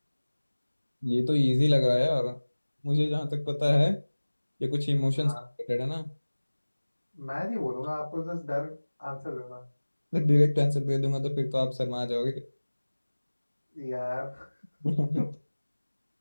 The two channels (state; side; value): inverted; both; correlation -1.00